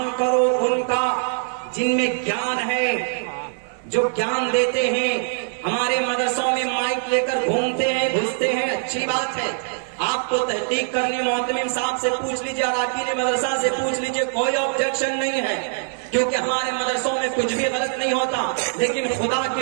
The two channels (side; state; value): left; silent; 62 dB below the other